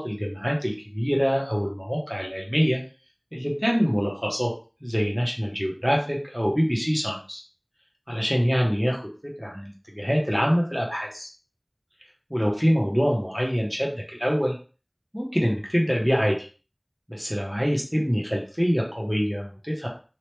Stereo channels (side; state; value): both; identical; correlation 1.00